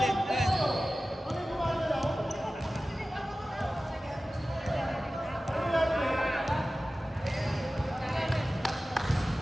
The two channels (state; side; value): normal; both; correlation 0.96